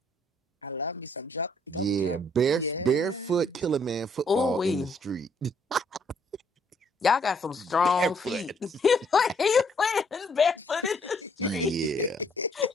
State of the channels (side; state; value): both; normal; correlation 0.66